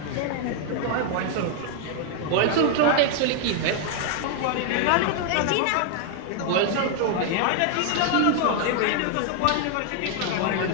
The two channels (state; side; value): different; both; correlation 0.00